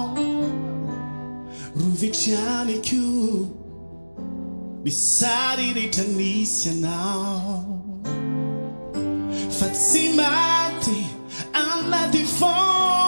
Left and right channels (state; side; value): inverted; both; correlation -1.00